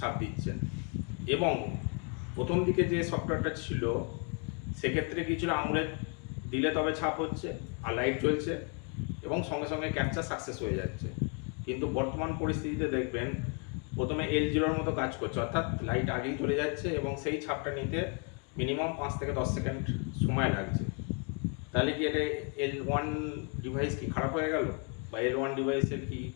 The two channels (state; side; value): quieter; right; 37.5 dB